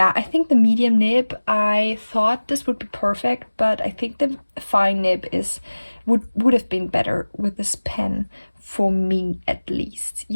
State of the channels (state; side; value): inverted; both; correlation -1.00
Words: I think the medium nib, I thought this would be perfect, but I think the fine nib would have been better with this pen, for me at least.